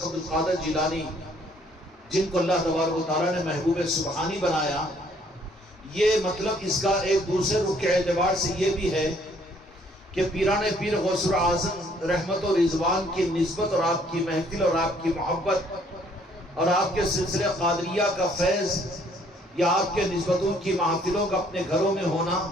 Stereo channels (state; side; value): normal; both; correlation 0.63